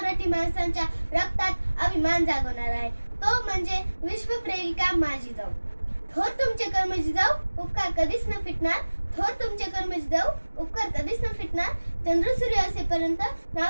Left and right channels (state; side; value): inverted; both; correlation -1.00